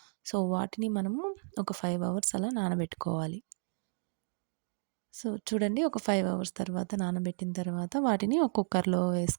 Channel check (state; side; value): silent; left; 56 dB below the other